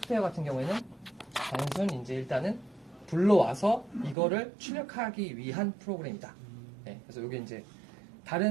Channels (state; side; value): drops out; left; at 4.2 s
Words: 같은 경우에는 단순 이제 일단은 불러와서 이거를 출력하기 위한 프로그램이다. 네, 그래서 이게 이제